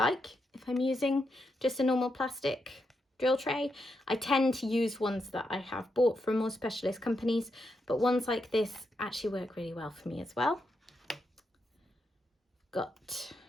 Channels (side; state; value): both; normal; correlation 0.83